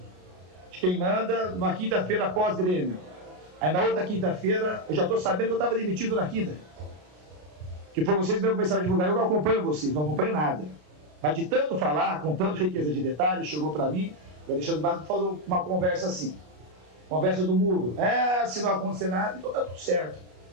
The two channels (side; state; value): left; late; 33 ms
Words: de quem manda numa quinta-feira pós-Grêmio. Aí na outra quinta-feira, eu já estou sabendo que eu estava demitido na quinta. Que foi vocês mesmo que começaram a divulgar. Eu não acompanho vocês, não acompanho nada. Mas de tanto falar, com tanta riqueza de detalhes, chegou para mim, o Alexandre Matos falou uma conversa assim. Conversa do muro. Se não acontecer nada, então está tudo certo.